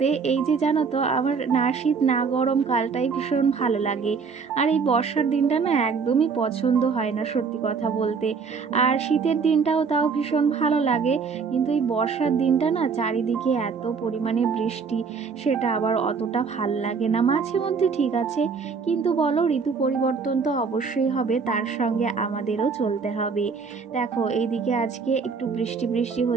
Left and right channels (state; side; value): quieter; left; 5.4 dB